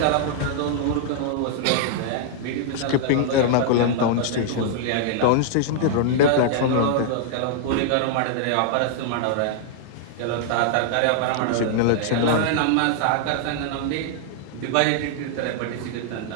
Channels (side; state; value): both; different; correlation -0.01